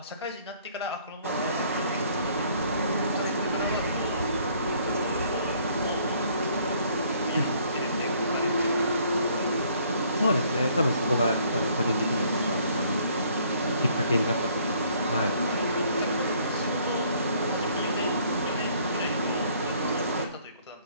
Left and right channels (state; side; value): inverted; both; correlation -0.62